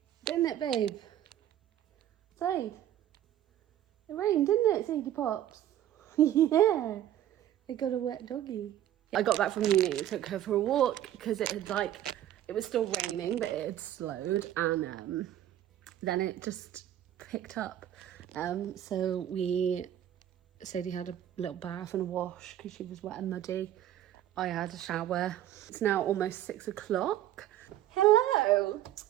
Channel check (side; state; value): left; quieter; 12.0 dB